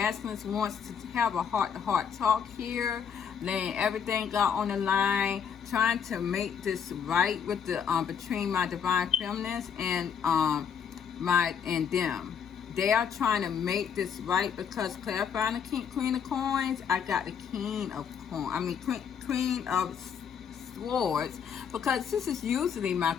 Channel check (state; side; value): quieter; right; 7.5 dB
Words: wants to have a heart-to-heart talk here, laying everything out on the line, trying to make this right with the between my Divine Feminines and them. They are trying to make this right because clarifying the Queen of Coins, I got the King of Coins. Queen of Swords, because this is usually my